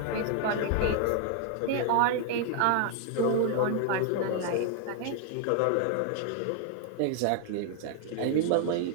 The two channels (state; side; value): different; both; correlation 0.00